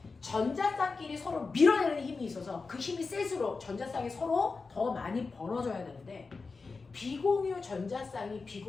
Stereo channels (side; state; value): right; quieter; 4.3 dB